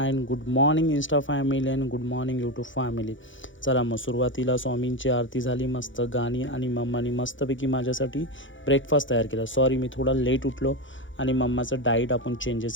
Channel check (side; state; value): right; late; 0.56 ms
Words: and good morning Insta family and good morning YouTube family. चला मग सुरुवातीला स्वामींची आरती झाली, मस्त गाणी आणि मम्मानी मस्तपैकी माझ्यासाठी ब्रेकफास्ट तयार केला. सॉरी मी थोडा लेट उठलो आणि मम्माचं डाईट आपण